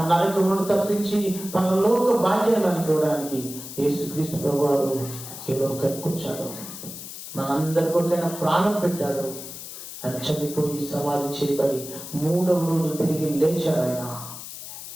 నరకమును తప్పించి పరలోక భాగ్యాన్ని మనకి ఇవ్వడానికి యేసుక్రీస్తు ప్రభువారు ఈ లోకానికి వచ్చాడు. మనందరి కొరకైనా ప్రాణం పెట్టాడు. ఆయన చనిపోయి సమాధి చేయబడి 3వ రోజు తిరిగి లేచాడు. ఆయన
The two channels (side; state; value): left; noise; hiss, 11 dB below the sound